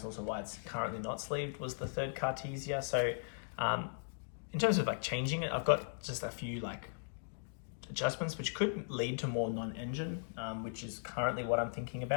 also why it's currently not sleeved, was the 3rd Cartesia. So in terms of like changing it, I've got just a few like adjustments which could lead to more non-engine, which is currently what I'm thinking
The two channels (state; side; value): silent; right; digital silence